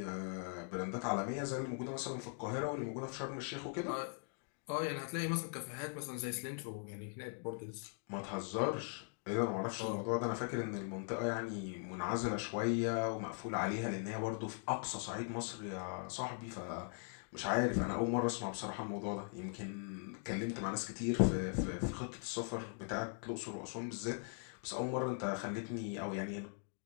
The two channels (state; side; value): silent; right; 51 dB below the other